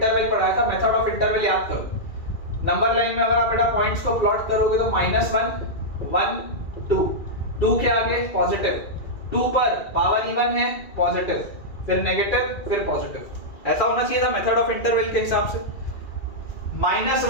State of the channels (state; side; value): late; right; 2.4 ms